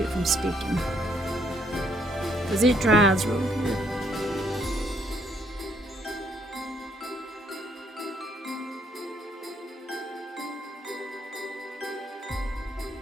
from sticking, because it dries real good.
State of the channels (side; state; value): both; normal; correlation 0.70